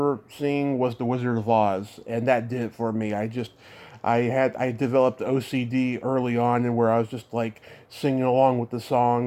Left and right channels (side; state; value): both; identical; correlation 1.00